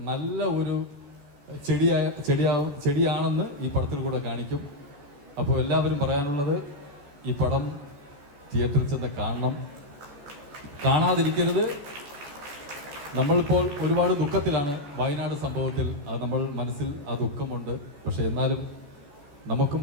നല്ല ഒരു ചെടിയാണെന്ന് ഈ പടത്തിൽ കൂടെ കാണിക്കും. അപ്പോൾ എല്ലാവരും പറയാനുള്ളത്, ഈ പടം തിയേറ്ററിൽ ചെന്ന് കാണണം, കാണാതിരിക്കരുത്. നമ്മളിപ്പോൾ ഒരുപാട് ദുഃഖത്തിലാണ് വയനാട് സംഭവത്തിൽ. അത് നമ്മൾ മനസ്സിൽ ആ ദുഃഖമുണ്ട്. പക്ഷെ എന്നാലും നമുക്കും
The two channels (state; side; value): late; left; 14 ms